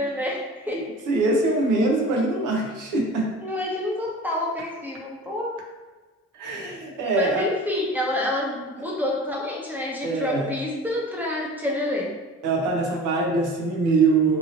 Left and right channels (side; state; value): both; normal; correlation 0.39